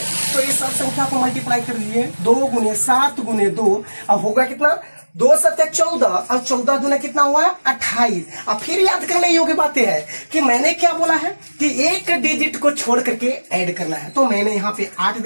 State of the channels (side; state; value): both; inverted; correlation -1.00